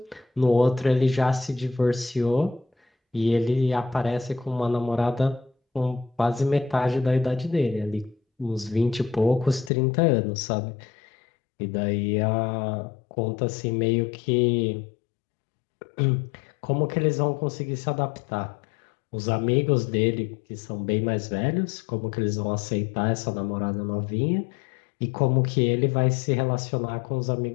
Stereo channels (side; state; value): right; drops out; at 9.7 s